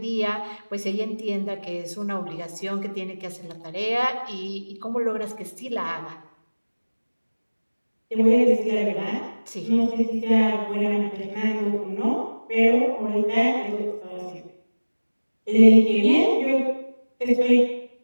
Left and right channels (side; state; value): both; inverted; correlation -1.00